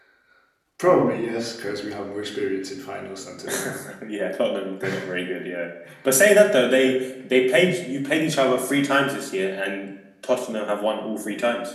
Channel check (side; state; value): both; identical; correlation 1.00